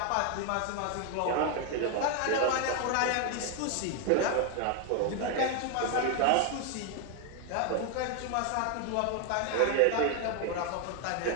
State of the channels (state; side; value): different; both; correlation 0.01